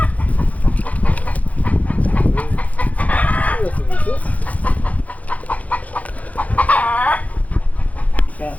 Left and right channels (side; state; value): right; late; 0.071 ms